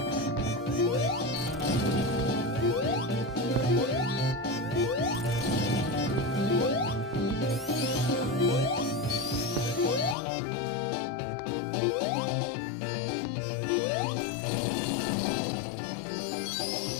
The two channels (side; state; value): right; drops out; at 10.2 s